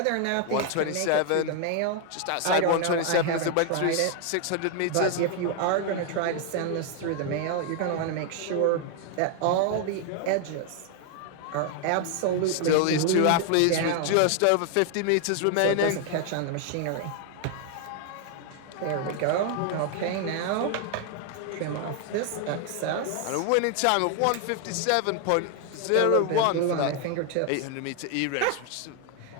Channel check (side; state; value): both; different; correlation 0.00